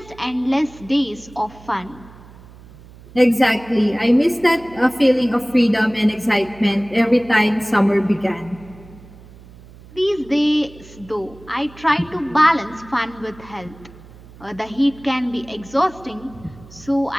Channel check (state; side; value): noise; right; hum, 21 dB below the sound